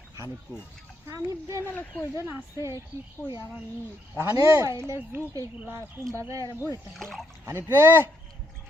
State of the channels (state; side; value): normal; both; correlation 0.74